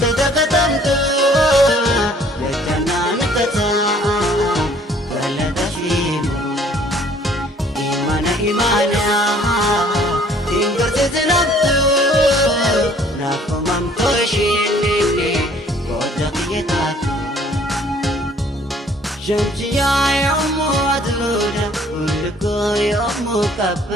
Lechanan kata kaladashimo Imana tinggal sezenapto Napamamto shinini kodak yetatu Shamsiya yomu adluda Ulko yomu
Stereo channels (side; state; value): both; normal; correlation 0.57